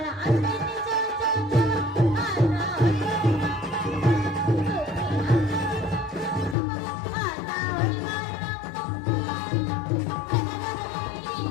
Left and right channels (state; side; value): drops out; right; at 6.6 s